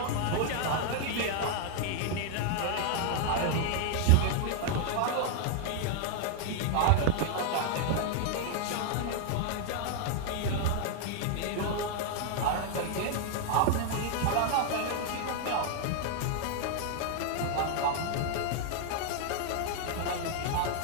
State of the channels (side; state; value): both; different; correlation 0.00